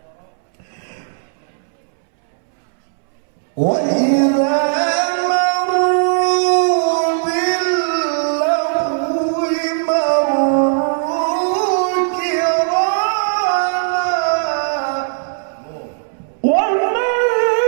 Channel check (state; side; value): silent; left; 68 dB below the other